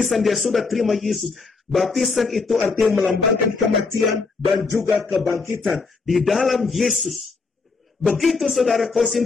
dia sudah terima Yesus. Baptisan itu artinya melambangkan kematian dan juga kebangkitan di dalam Yesus. Begitu saudara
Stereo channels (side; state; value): right; quieter; 4.3 dB